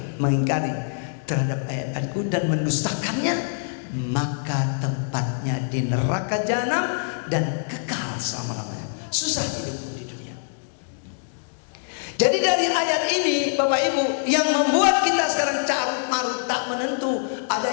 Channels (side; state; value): right; silent; digital silence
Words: mengingkari terhadap ayat-ayatku dan mendustakannya, maka tempatnya di neraka jahanam dan kekal selama-lamanya. Susah hidup di dunia. Jadi dari ayat ini Bapak Ibu, yang membuat kita sekarang carut marut tak menentu, ada